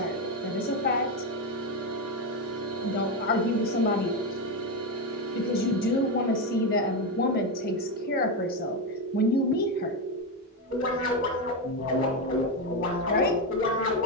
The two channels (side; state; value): both; normal; correlation 0.10